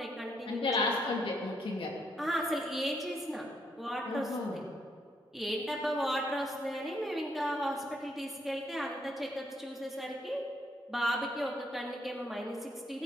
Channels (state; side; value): normal; both; correlation 0.73